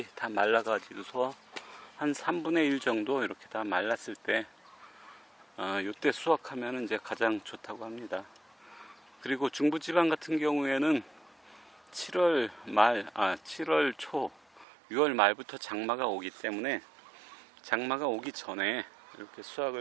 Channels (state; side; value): drops out; left; at 14.7 s